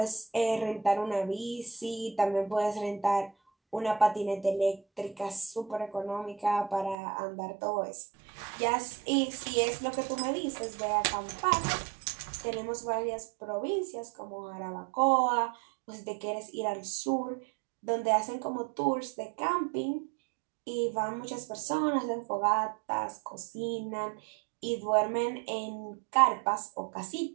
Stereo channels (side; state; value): left; drops out; at 7.0 s